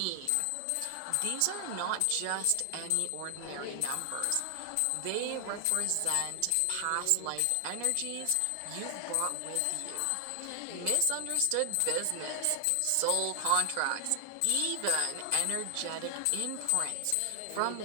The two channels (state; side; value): different; both; correlation 0.00